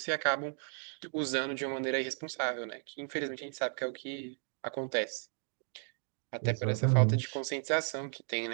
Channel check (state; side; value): silent; left; 55 dB below the other